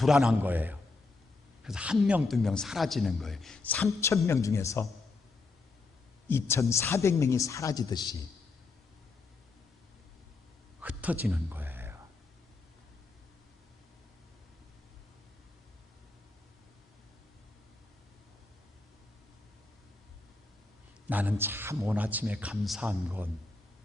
거예요. 그래서 1명, 2명 사라지는 거예요. 3,000명 중에서 2,400명이 사라지듯이 흩어지는 거예요. 나는 참 오늘 아침에 감사한 건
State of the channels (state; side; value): quieter; right; 3.6 dB